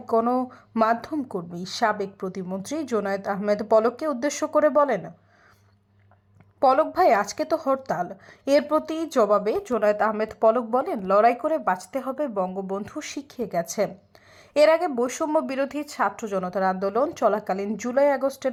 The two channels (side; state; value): both; identical; correlation 1.00